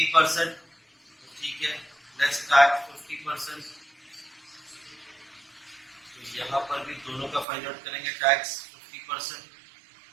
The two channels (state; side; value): drops out; left; at 7.5 s